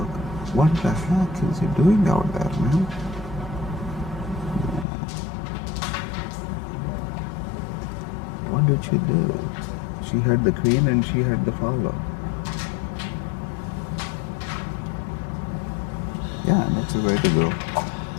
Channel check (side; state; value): right; drops out; at 4.9 s